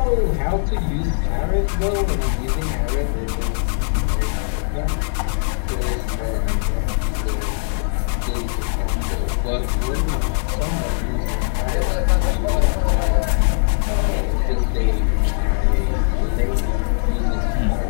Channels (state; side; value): silent; right; digital silence